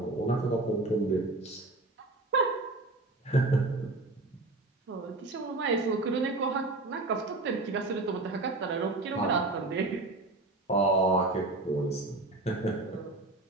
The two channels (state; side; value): quieter; left; 3.0 dB